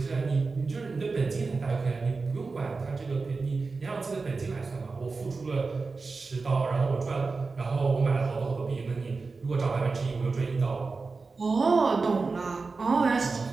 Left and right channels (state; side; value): quieter; left; 4.2 dB